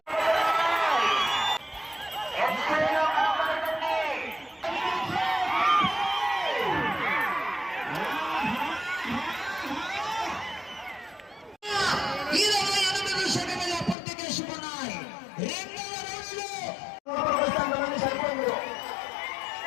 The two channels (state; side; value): drops out; right; at 14.0 s